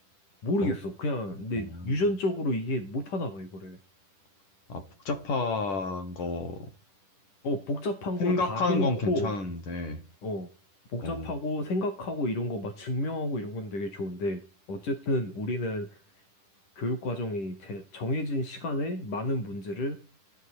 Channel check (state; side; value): late; right; 10 ms